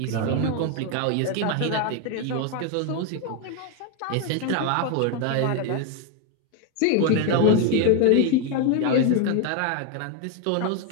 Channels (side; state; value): both; different; correlation 0.01